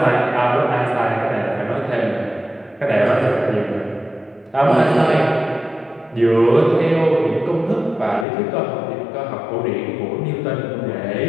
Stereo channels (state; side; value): drops out; right; at 8.2 s